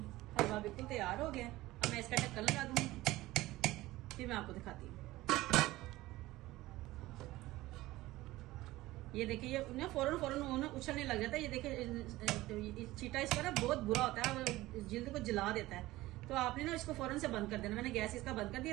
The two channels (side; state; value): left; quieter; 17.8 dB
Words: हलवा बिल्कुल तैयार हो गया। अब मैं इसका ढक्कन लगा दूंगी, फिर मैं आपको दिखाती हूँ। ये देखिए ये ना फौरन वो ना उछलने लग जाता है। ये देखिए चीटा इसका ना बहुत बुरा होता है, जिल्द को जला देता है। तो आपने ना इसको फौरन से बंद कर देना। मैंने गैस इसका बंद कर